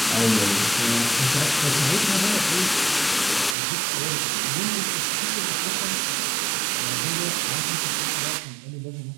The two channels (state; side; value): drops out; left; at 3.6 s